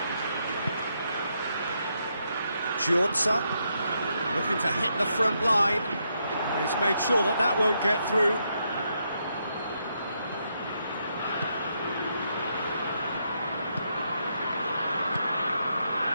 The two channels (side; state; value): both; inverted; correlation -0.79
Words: Giorza looking to hit the front line. He's made sure that that won't get through.